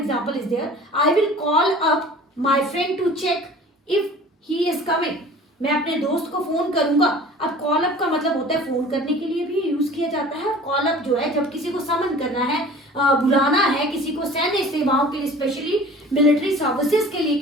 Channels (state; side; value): normal; both; correlation 0.44